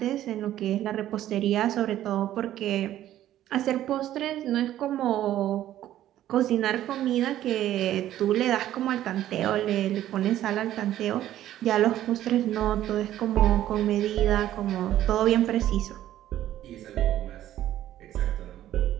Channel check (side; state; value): left; quieter; 12.8 dB